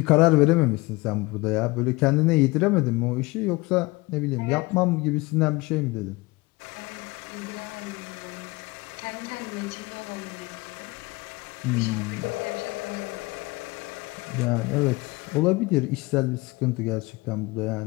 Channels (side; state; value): right; quieter; 23.1 dB